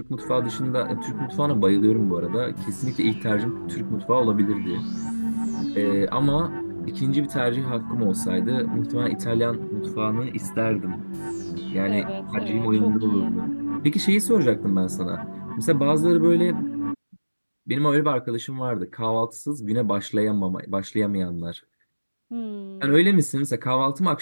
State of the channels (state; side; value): inverted; both; correlation -1.00